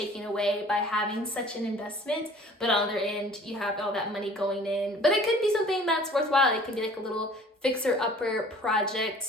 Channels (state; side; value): normal; both; correlation 0.50